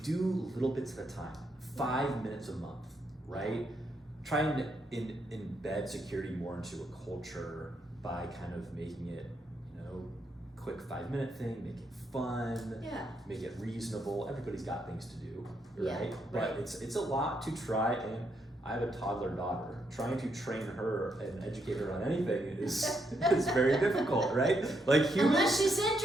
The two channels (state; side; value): normal; both; correlation 0.78